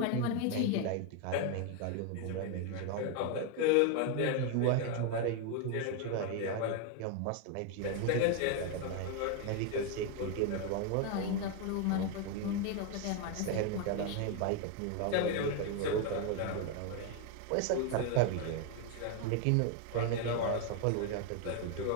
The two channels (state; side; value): different; both; correlation 0.01